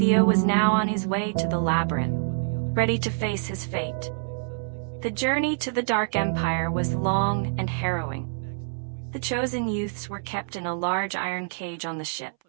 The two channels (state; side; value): silent; left; 61 dB below the other